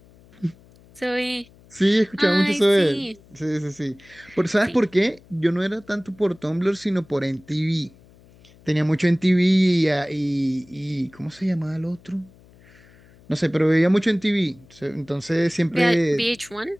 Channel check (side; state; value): left; noise; hum, 26 dB below the sound